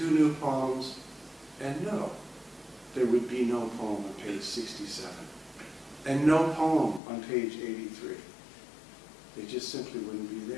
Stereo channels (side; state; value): right; drops out; at 7.0 s